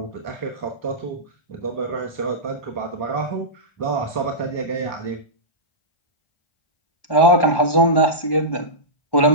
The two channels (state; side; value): late; right; 1.1 ms